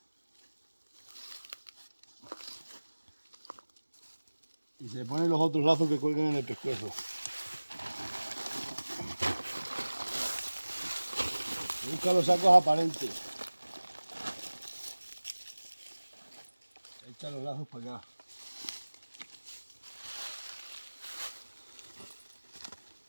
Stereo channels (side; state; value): both; inverted; correlation -1.00